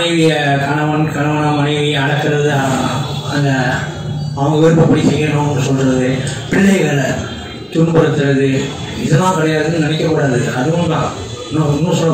கணவனா மனைவியை அடக்கிறது, அந்த அவங்க விருப்பப்படி செய்யணும்னு சொல்றது, பிள்ளைகளை துன்புறுத்துறது, இதெல்லாம் கிடையாதுன்னு நினைக்கக்கூடாது. அதுவும் தான். இன்னும் சொல்ல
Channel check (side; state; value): both; identical; correlation 1.00